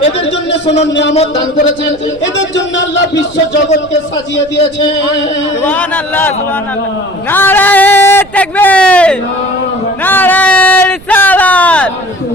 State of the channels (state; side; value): noise; right; rumble, 22 dB below the sound